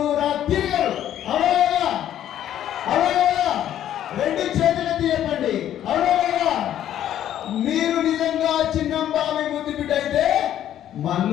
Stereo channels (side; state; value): right; quieter; 11.3 dB